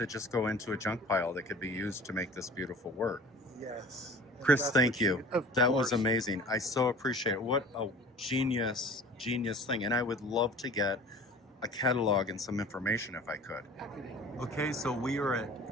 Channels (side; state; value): both; normal; correlation 0.44